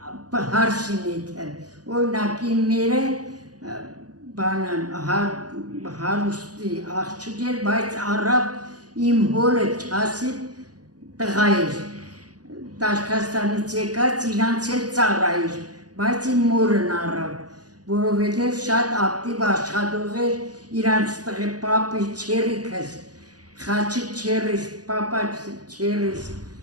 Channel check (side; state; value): left; late; 0.68 ms